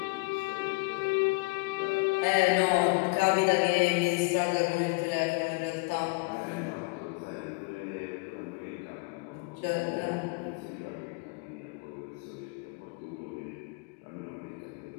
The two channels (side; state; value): right; quieter; 30.7 dB